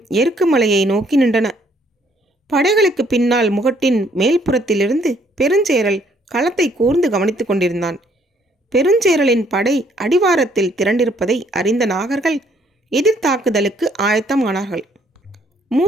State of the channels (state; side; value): normal; both; correlation 0.65